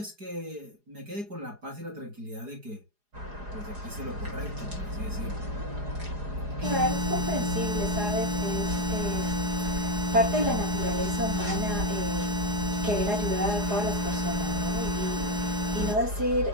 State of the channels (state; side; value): late; left; 4.8 ms